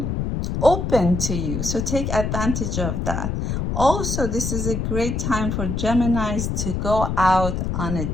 open to you. So take advantage of that. Also, this is a great time for Geminis to go out on a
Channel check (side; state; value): left; noise; rumble, 1 dB below the sound